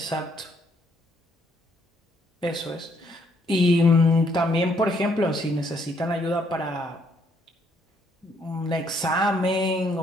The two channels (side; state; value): both; normal; correlation 0.70